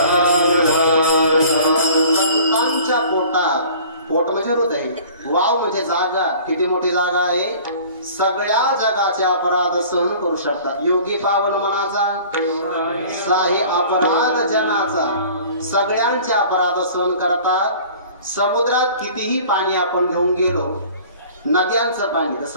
संतांच्या पोटात. पोट म्हणजे हृदय. वाव म्हणजे जागा. किती मोठी जागा आहे. सगळ्या जगाचे अपराध सहन करू शकतात. योगी पावन मनाचा साहे अपराध जनाचा. सगळ्यांचे अपराध सहन करतात. समुद्रात कितीही पाणी आपण घेऊन गेलो नद्यांचं पाणी तर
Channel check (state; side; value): inverted; both; correlation -0.47